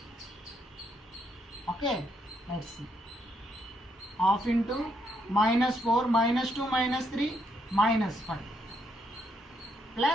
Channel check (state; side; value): normal; both; correlation 0.75